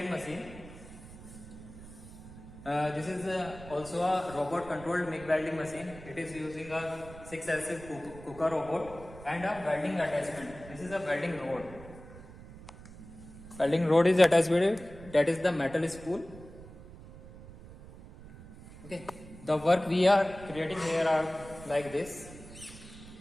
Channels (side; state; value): right; noise; rumble, 17 dB below the sound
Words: machine. This is also a robot controlled MIG welding machine. It is using a 6-axis KUKA robot and a welding attachment. This is a welding rod. Welding rod is attached with it. That is the metal spool. Okay, the work we are creating here are like this.